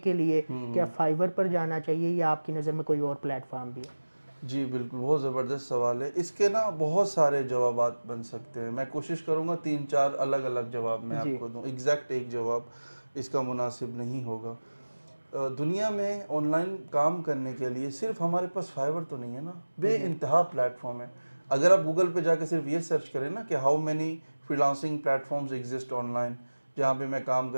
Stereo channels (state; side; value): inverted; both; correlation -1.00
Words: لیے کیا فائیور پر جانا چاہیے یا آپ کی نظر میں کوئی اور پلیٹ فارم بھی ہے؟ جی بالکل، بہت زبردست سوال ہے۔ اس کے نا بہت سارے جوابات بن سکتے ہیں، میں کوشش کروں گا 3-4 الگ الگ جواب میں آپ کو دوں، ایگزیکٹ ایک جواب اس کا مناسب نہیں ہوگا۔ دنیا میں آن لائن کام کرنے کے لیے صرف ہمارے پاس فائیور تو نہیں ہے نا، بے انتہا پلیٹ فارم ہے۔ اگر آپ گوگل پہ جا کے صرف یہ سرچ کریں نا کہ how many freelancing platforms exist online, جہاں پہ میں کام